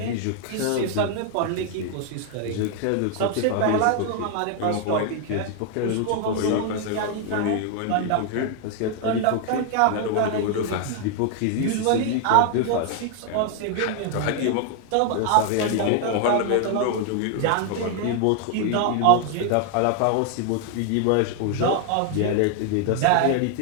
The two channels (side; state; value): both; different; correlation 0.00